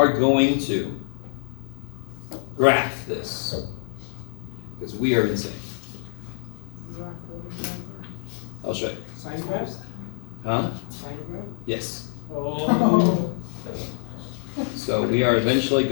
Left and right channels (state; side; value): silent; right; digital silence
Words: going to graph this, because we are insane. I'll show you. Sine graphs? Huh? Sine graph? Yes. Oh. So we are eventually